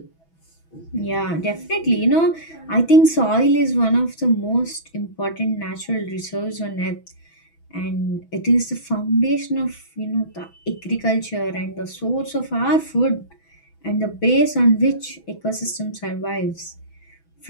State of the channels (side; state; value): right; late; 6.1 ms